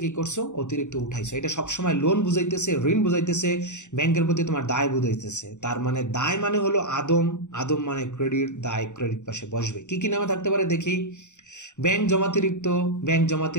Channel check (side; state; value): right; late; 0.84 ms